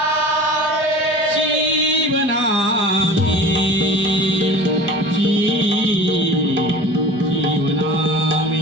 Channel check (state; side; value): normal; both; correlation 0.39